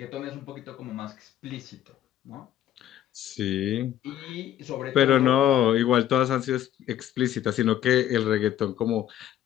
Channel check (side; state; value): right; quieter; 11.5 dB